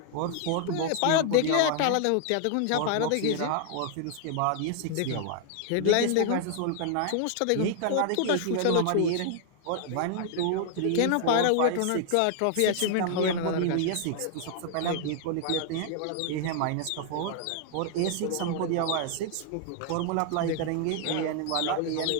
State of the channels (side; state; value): both; different; correlation 0.00